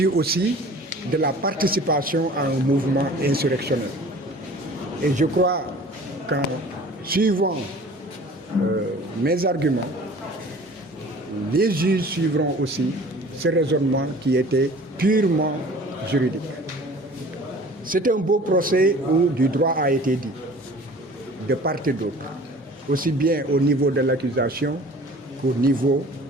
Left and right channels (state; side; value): normal; both; correlation 0.46